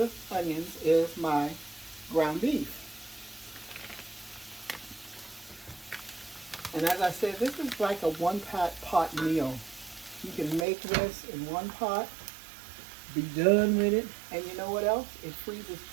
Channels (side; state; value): left; drops out; at 10.7 s